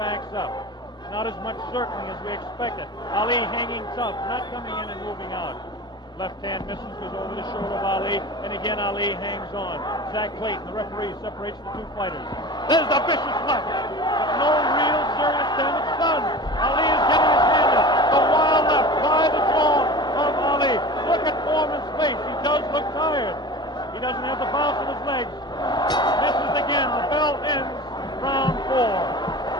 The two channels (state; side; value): normal; both; correlation 0.35